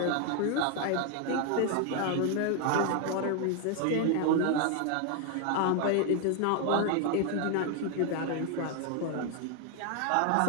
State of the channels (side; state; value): both; different; correlation 0.01